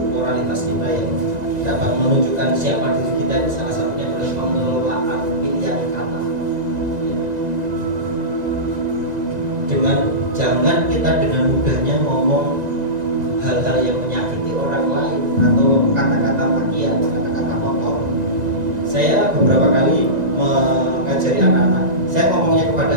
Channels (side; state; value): left; late; 1.9 ms